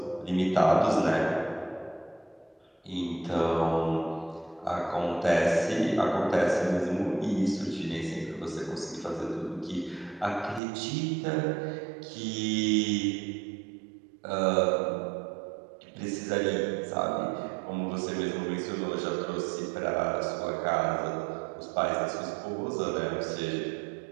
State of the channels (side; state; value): left; drops out; at 10.6 s